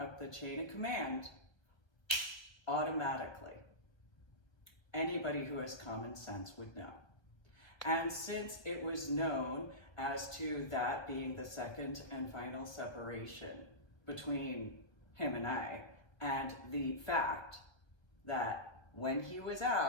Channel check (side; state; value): right; late; 1.1 ms